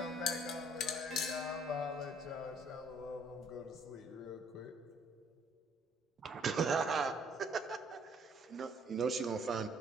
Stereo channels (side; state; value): both; normal; correlation 0.62